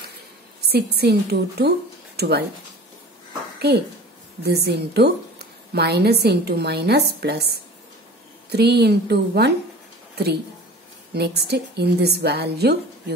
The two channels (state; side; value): normal; both; correlation 0.40